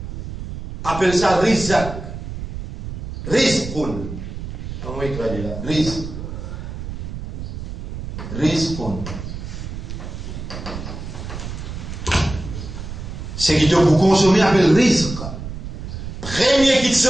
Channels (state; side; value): noise; right; rumble, 8 dB below the sound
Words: appelle ça rizq. Rizqun. Comment il traduit là? Rizq. Rizqun. Ce qui te pour consommer appelle rizq. Première petite